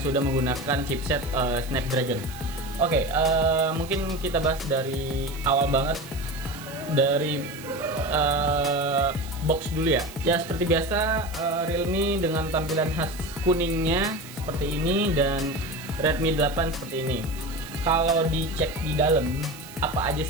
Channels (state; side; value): noise; right; hiss, 18 dB below the sound